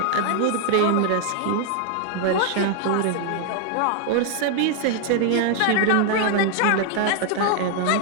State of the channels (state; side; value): different; both; correlation 0.00